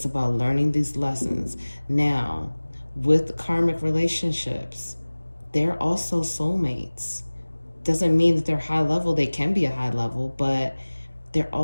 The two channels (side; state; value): both; inverted; correlation -1.00